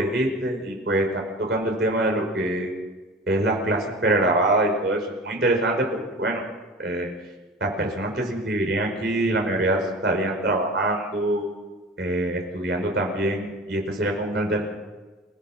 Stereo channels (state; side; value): normal; both; correlation 0.36